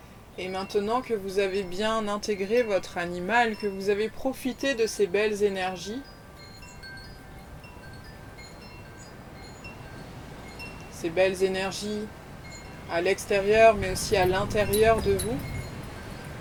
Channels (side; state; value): both; identical; correlation 1.00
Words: Et maintenant que vous avez bien intégré votre animal, que vous avez profité de ces belles énergies, à l'extérieur mais aussi à l'intérieur de vous,